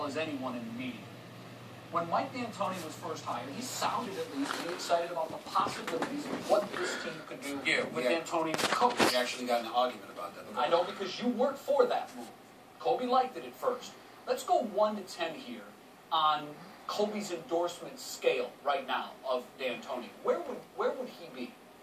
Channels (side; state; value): both; identical; correlation 1.00